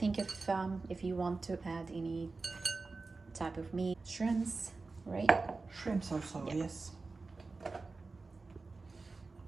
if you want to add any type of meat, shrimps, right? Shrimps also, Yeah. yes.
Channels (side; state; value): left; quieter; 3.8 dB